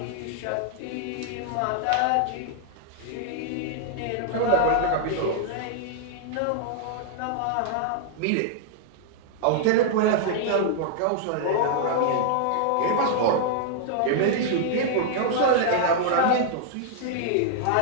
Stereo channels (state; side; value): different; both; correlation -0.01